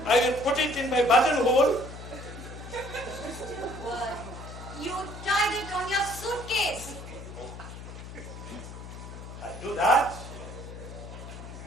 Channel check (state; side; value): noise; left; hum, 12 dB below the sound